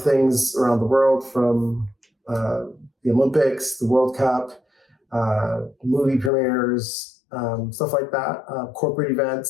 things around the world, from the Olympics, the World Cup, movie premieres, stuff like that, corporate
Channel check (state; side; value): drops out; right; at 6.3 s